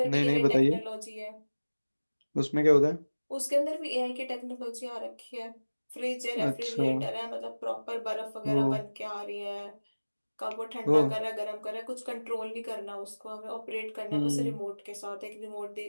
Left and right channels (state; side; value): inverted; both; correlation -1.00